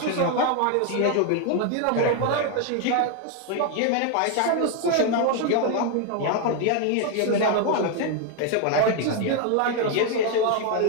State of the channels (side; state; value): both; different; correlation 0.01